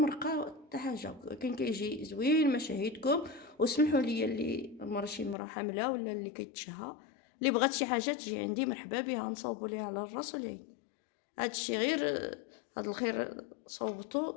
حتى حاجه، كان كيجي زوين. مشاهدكم وسمحوا لي اللي شي مرا حامله ولا اللي كيتشهى اللي بغات شي حاجه تجي عندي مرحبا بها، نصاوبوا ليها على الراس والعين. هادشي غير هاد الخير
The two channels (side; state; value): right; drops out; at 5.4 s